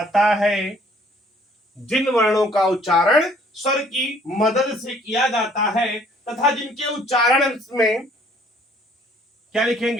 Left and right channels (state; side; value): normal; both; correlation 0.59